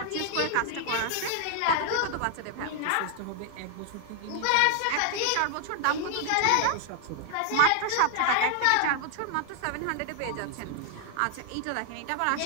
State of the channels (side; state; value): both; different; correlation 0.00